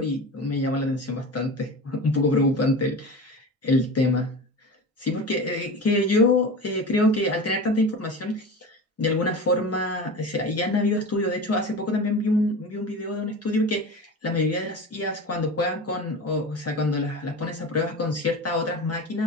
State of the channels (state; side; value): normal; both; correlation 0.30